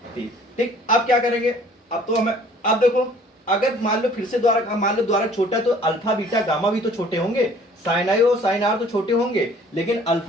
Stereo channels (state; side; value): normal; both; correlation 0.54